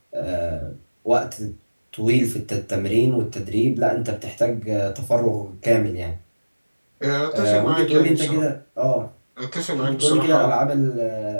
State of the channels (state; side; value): inverted; both; correlation -1.00